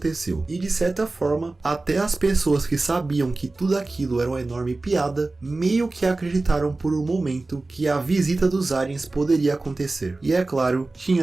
E de certa forma, até as pessoas que sabiam que tudo aquilo era uma enorme piada, meio que acreditaram por um momento que a visita dos aliens poderia acontecer. E é claro,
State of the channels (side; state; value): left; quieter; 3.2 dB